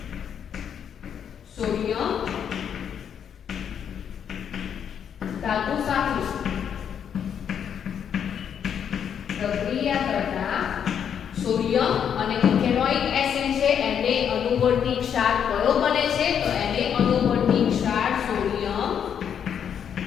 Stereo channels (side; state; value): right; quieter; 8.2 dB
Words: સોડિયમ ધાતુ સાથે પ્રક્રિયા કરતા સોડિયમ અને ઇથેનોઇક એસિડ છે એને અનુવર્તી ક્ષાર કયો બને છે? તો એને અનુવર્તી ક્ષાર સોડિયમ